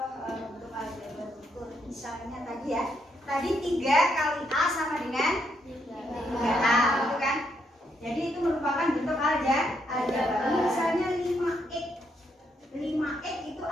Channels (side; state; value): both; normal; correlation 0.76